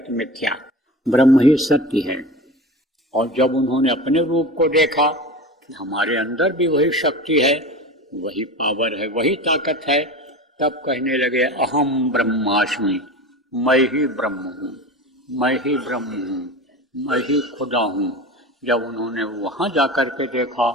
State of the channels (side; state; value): both; normal; correlation 0.31